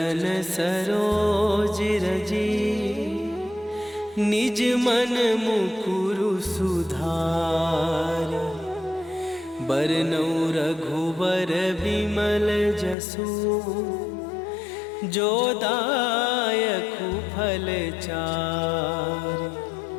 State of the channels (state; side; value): drops out; right; at 13.0 s